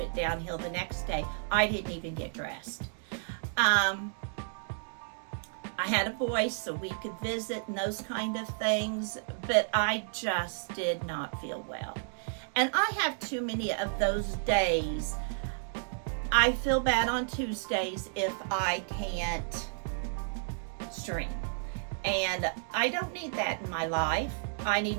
downhill the next day. I didn't even get dressed. I had a voice so we could visit and those kind of things, but I just did not feel well. And I have too many of those days. I feel bad on Tuesdays if I can't stream. And I don't need that in my life. I need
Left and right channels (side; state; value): left; silent; digital silence